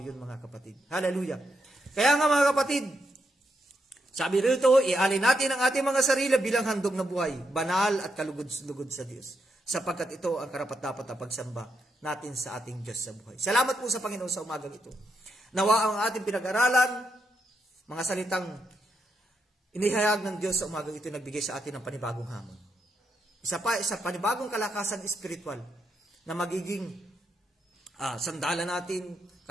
yun mga kapatid. Hallelujah. Kaya nga mga kapatid, sabi rito, ialin natin ang ating mga sarili bilang handog na buhay, banal at kalugod-lugod sa Diyos. Sapagkat ito ang karapat-dapat na pagsamba natin sa ating Diyos sa buhay. Salamat po sa Panginoon sa umagang ito. Nawa ang ating pinag-aralan, mga salitang inihayag ng Diyos sa umagang ito, nagbigay sa atin ng panibagong hamon. Isa panibagong kalakasan espiritual na magiging sandalan natin,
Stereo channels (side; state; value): both; normal; correlation 0.81